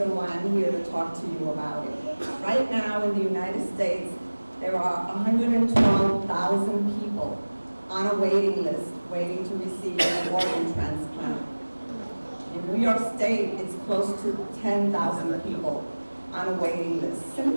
why I'm here to talk to you about it. Right now in the United States, there are 112,000 people on a waiting list waiting to receive an organ transplant. In New York State, it's close to 10,000 people on a waiting list,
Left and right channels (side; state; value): both; inverted; correlation -1.00